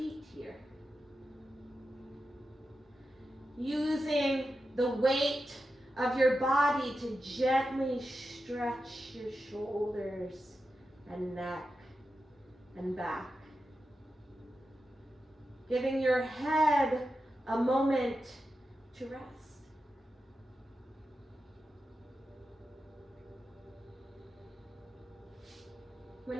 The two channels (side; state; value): both; normal; correlation 0.90